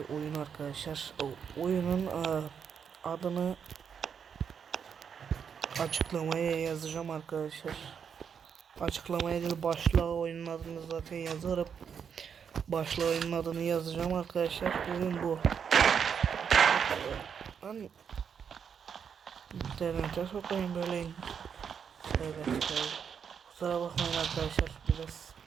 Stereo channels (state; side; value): quieter; left; 7.2 dB